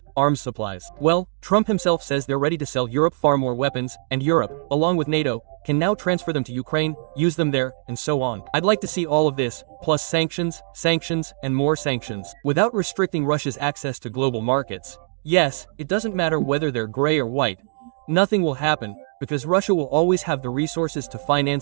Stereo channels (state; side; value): silent; left; 64 dB below the other